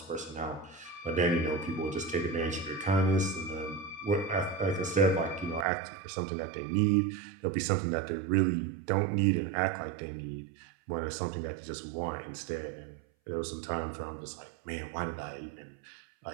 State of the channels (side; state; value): left; drops out; at 5.7 s